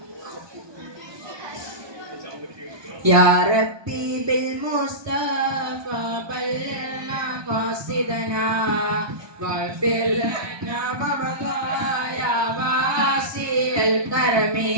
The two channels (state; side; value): late; left; 1.2 ms